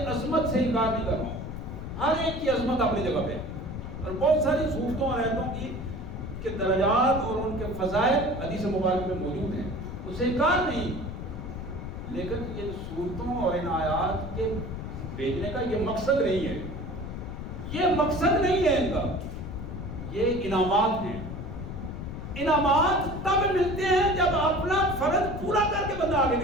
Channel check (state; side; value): noise; left; rumble, 8 dB below the sound